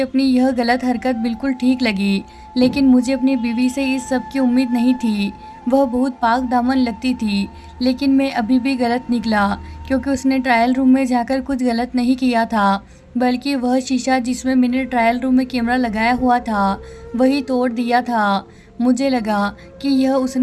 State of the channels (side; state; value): both; identical; correlation 1.00